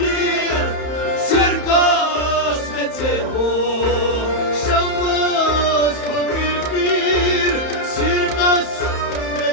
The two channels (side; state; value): right; late; 31 ms